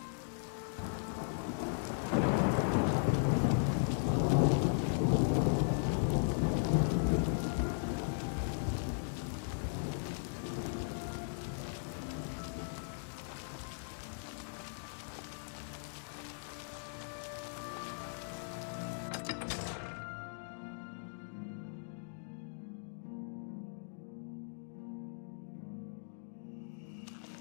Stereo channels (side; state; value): right; silent; digital silence